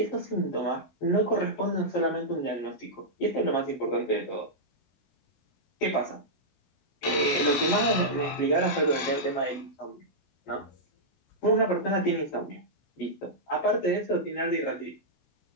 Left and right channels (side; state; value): right; late; 16 ms